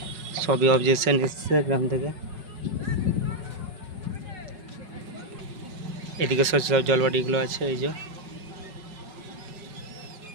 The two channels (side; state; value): left; late; 5.4 ms